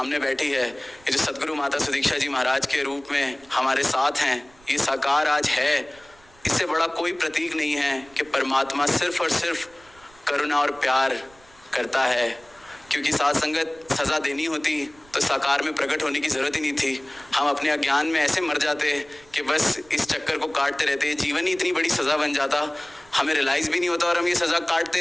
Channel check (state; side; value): noise; right; rumble, 27 dB below the sound